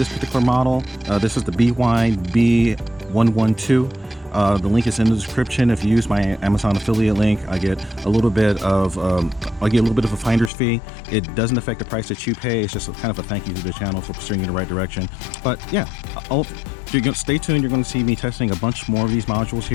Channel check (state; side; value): drops out; right; at 10.5 s